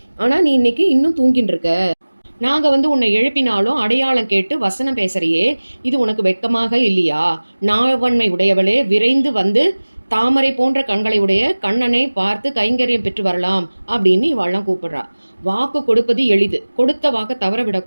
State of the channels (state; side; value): inverted; both; correlation -1.00